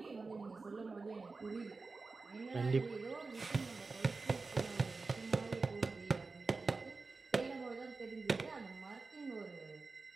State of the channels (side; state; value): left; quieter; 4.0 dB